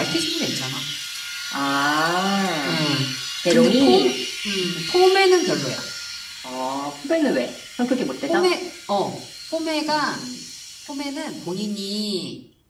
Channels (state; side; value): identical; both; correlation 1.00